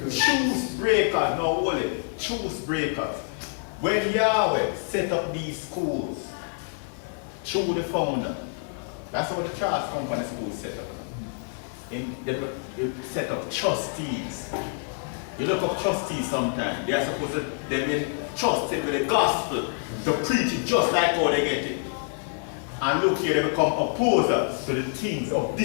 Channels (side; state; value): right; silent; 60 dB below the other